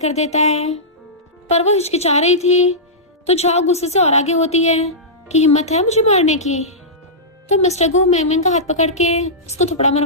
देता है पर वो हिचकिचा रही थी तो झाओ गुस्से से और आगे होती है कि हिम्मत है मुझे मारने की। तो मिस्टर गु मैंग का हाथ पकड़ के उसको थप्पड़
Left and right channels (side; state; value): both; normal; correlation -0.16